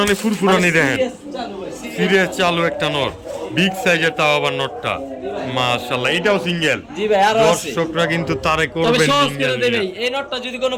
ফুরফুরানি দেখেন, Serious চালু ভাই, serious। সিরিয়াস চালু একটা নর, বিগ সাইজের, তাও আবার নটটা মাশাআল্লাহ। এটাও সিঙ্গেল। জি ভাই, আরো আছে। দর্শকরা কিন্তু তারে তবে করবেন সহজ সিঙ্গেল করে দেবে। এই নটটা যদি কোনো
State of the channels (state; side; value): identical; both; correlation 1.00